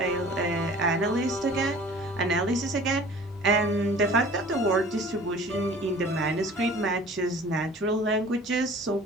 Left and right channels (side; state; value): both; normal; correlation 0.46